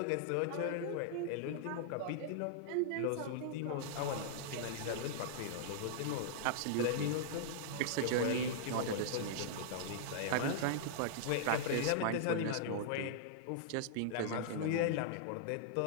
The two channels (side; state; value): both; different; correlation -0.02